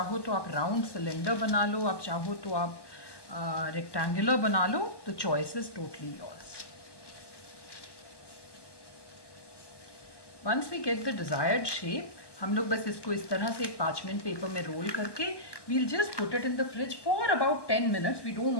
तो आप राउंड सिलेंडर बना लो, आप चाहो तो आप रेक्टेंगुलर बना लो. The choice is totally yours. Once we get the desired shape, हम लोग बस इसको इस तरह से एक पार्चमेंट पेपर में रोल करके we'll just put it in the fridge for about 10 minutes. We don't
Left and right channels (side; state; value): right; late; 1.1 ms